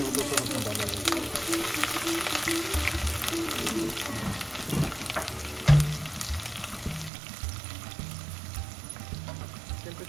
वो तो सब उसमें डाला है.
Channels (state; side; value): drops out; left; at 7.1 s